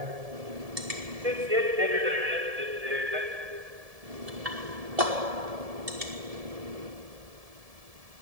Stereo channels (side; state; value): left; late; 1.7 ms